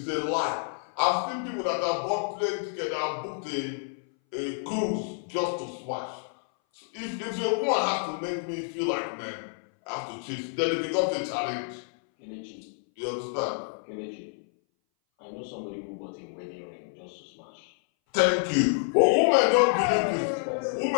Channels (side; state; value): right; silent; 59 dB below the other